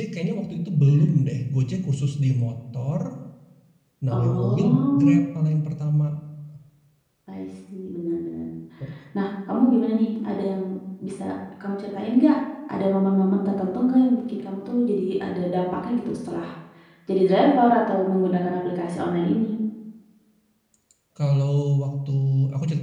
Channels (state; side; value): identical; both; correlation 1.00